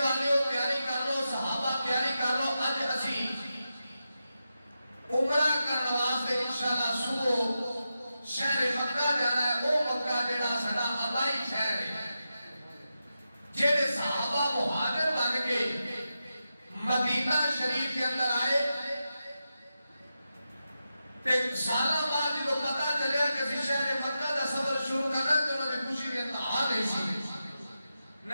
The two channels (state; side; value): inverted; both; correlation -0.89